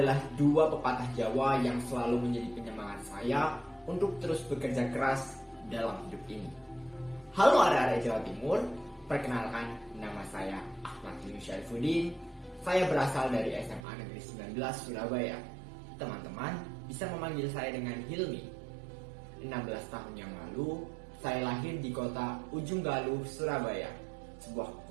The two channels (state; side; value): drops out; left; at 13.9 s